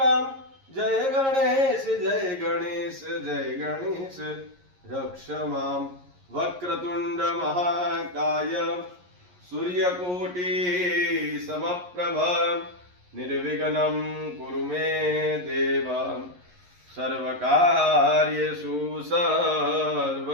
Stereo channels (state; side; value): late; left; 11 ms